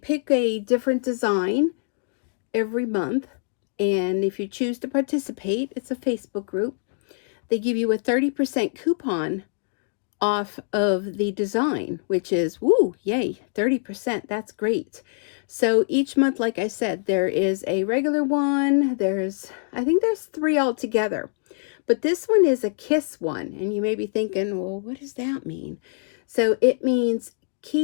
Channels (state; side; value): silent; right; digital silence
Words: a different design every month, and if you choose to participate, it's a Facebook group, they give you a 30% coupon off of the design, which is woo, yay, 30%. That's great. So each month, like I said, there is a regular one. I think there's 3 altogether, but this one is a kiss one, and you may be thinking, well, what does that mean? So it means